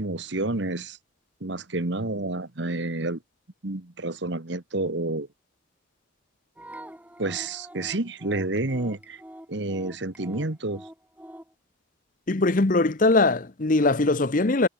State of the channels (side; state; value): both; normal; correlation 0.23